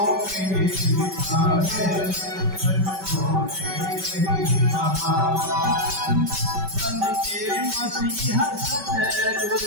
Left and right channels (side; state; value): left; late; 5.2 ms